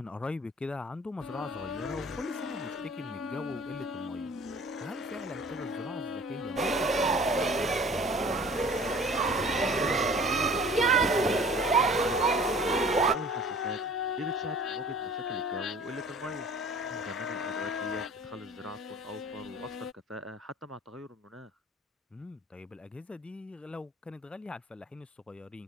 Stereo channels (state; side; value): normal; both; correlation 0.47